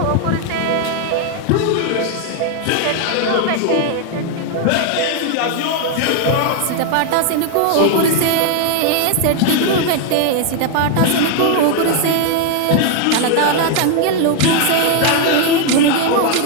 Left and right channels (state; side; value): different; both; correlation 0.00